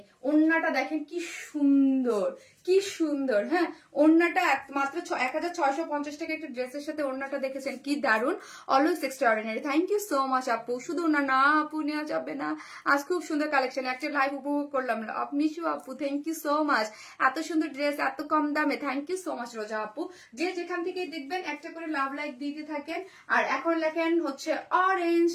ওন্নাটা দেখেন কি সুন্দর, কি সুন্দর। হ্যাঁ ওন্নাটা মাত্র 1650 টাকা একটা ড্রেসের সাথে ওন্নাটা দেখেছেন কি দারুন, always extraordinary. Thank you so much আপু। শুধু ওনা না আপু নেওয়া যাবে না, আজ খুব সুন্দর কালেকশন, একটা লাইভ উপভোগ করলাম। মিশু আপু থ্যাংক ইউ সো মাচ, এত সুন্দর ড্রেস এত কম দামে, থ্যাংক ইউ সো মাচ রোজা আপু। যে যেখান থেকে দেখবেন একটা করে লাভ লাইক দিতে থাকেন। আর এখন লেখেন হচ্ছে অরেঞ্জ,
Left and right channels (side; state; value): both; identical; correlation 1.00